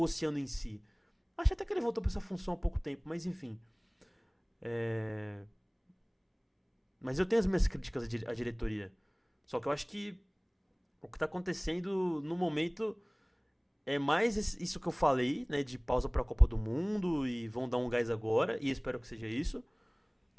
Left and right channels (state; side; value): identical; both; correlation 1.00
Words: em si. Acho até que ele voltou pra essa função há pouco tempo, mas enfim. Mas eu tenho as minhas críticas à diretoria. Só que eu acho que o que tá acontecendo no momento é mais isso que eu falei, né, de pausa pra Copa do Mundo e vão dar um gás agora, e espero que seja isso,